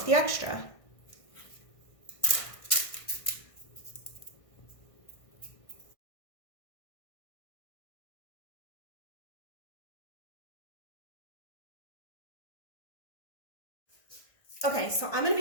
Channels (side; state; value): right; late; 1.6 ms